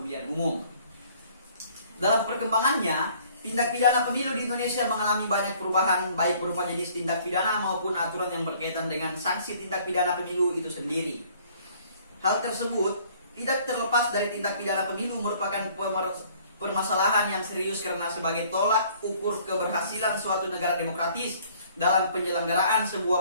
umum. Dalam perkembangannya, tindak pidana pemilu di Indonesia mengalami banyak perubahan, baik berupa jenis tindak pidana maupun aturan yang berkaitan dengan sanksi tindak pidana pemilu itu sendiri. Hal tersebut tidak terlepas dari tindak pidana pemilu merupakan permasalahan yang serius karena sebagai tolak ukur keberhasilan suatu negara demokratis dalam penyelenggaraan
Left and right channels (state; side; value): inverted; both; correlation -0.57